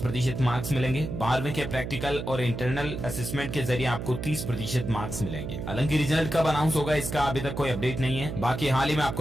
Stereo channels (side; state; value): right; noise; hum, 6 dB below the sound